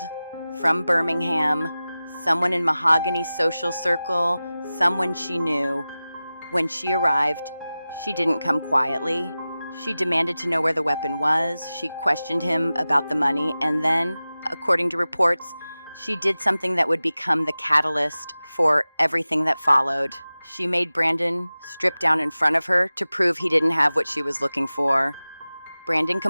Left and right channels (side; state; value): both; inverted; correlation -0.96